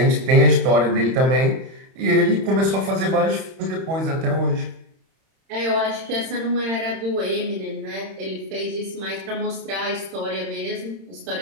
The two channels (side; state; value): left; late; 31 ms